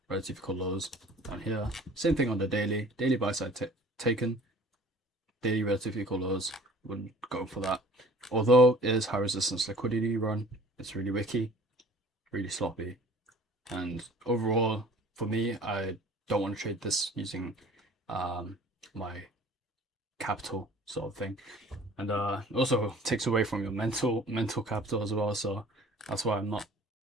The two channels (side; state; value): both; normal; correlation 0.49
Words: relative equal lows down here. Same thing on the daily. Daily buy side taken, daily relative equal lows. Wouldn't go for that. Although it is high resistance liquidity run, it's really wicky, really sloppy. And overall, for me, I don't want to trade this using my capital sort of thing, and also takes away from your mental capital as well. So that's why I'm not